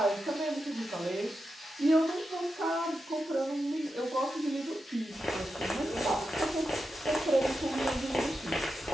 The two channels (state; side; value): normal; both; correlation 0.89